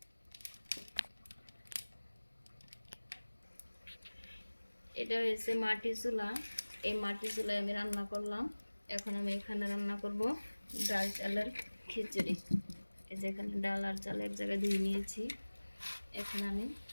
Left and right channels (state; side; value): inverted; both; correlation -1.00